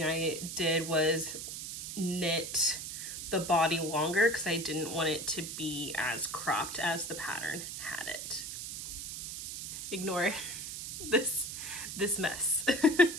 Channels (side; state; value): right; noise; hiss, 7 dB below the sound